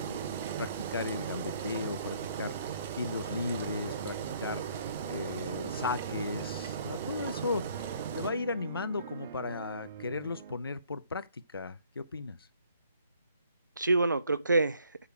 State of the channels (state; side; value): inverted; both; correlation -0.63